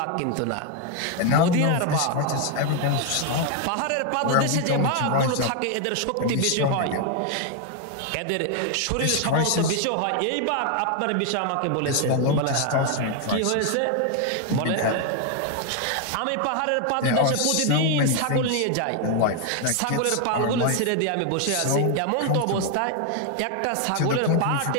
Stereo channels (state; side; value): different; both; correlation 0.01